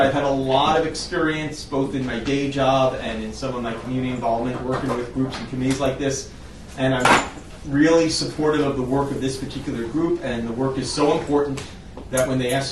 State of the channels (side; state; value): both; identical; correlation 1.00